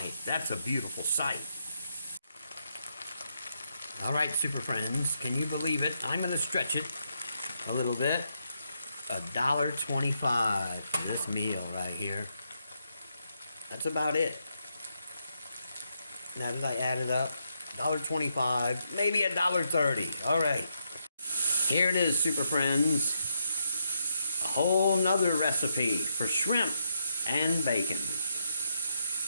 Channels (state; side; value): inverted; both; correlation -0.80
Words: that's a beautiful sight. All right, Super Friends, can you believe it? I'm going to stretch it a little bit. $1.25 for this meal right here. That's about it. Now that I add it up, $1.25, maybe $1.30. All right. Here it is, Super Friends. A whole nother recipe for shrimp and bacon.